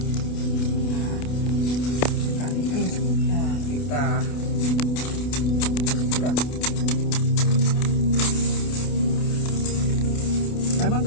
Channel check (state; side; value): late; right; 28 ms